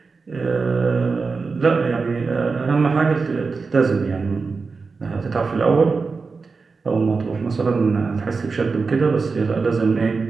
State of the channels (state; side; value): quieter; left; 4.5 dB